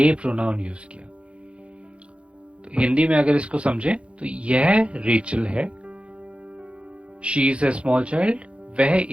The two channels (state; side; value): late; left; 0.060 ms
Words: प्रोनाउन यूज किया। तो हिंदी में अगर इसको समझें तो यह रेचल है, she is a small child, वह